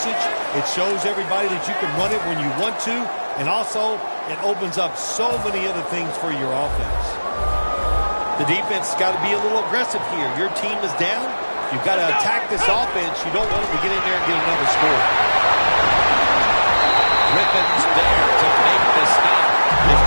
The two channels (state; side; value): inverted; both; correlation -1.00